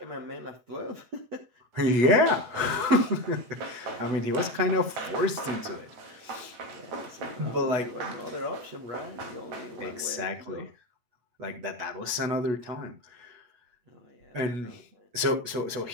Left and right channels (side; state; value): left; late; 8.1 ms